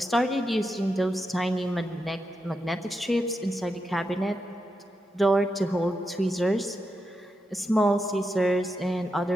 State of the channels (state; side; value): normal; both; correlation 0.86